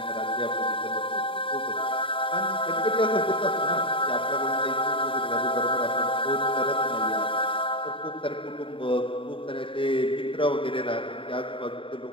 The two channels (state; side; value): late; right; 0.25 ms